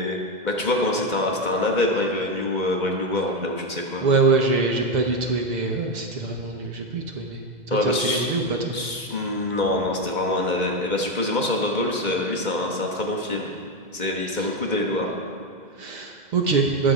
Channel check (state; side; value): late; left; 2.0 ms